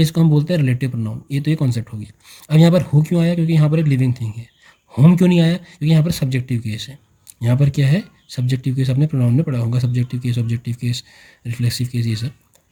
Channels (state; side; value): identical; both; correlation 1.00